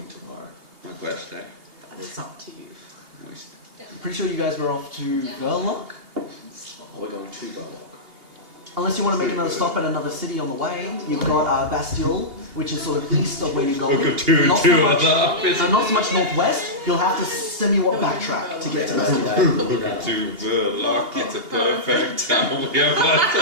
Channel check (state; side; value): late; left; 2.8 ms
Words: tomorrow? My quest, eh? That is up to you. I'm pretty sure you guys were off to Verloc. Oh, we're going to Verloc. Unless you want to make another stop at another city on the way. You've got Bastille, which is sort of east of where you're going. We'll go two Not and so two much, other. not so much northwest. You'll have to somewhat backtrack to get to Bastille. Welcome to Verloc. It's a perfect town. We have lots